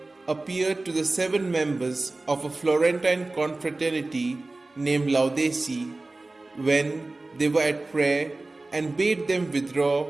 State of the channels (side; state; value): left; quieter; 3.1 dB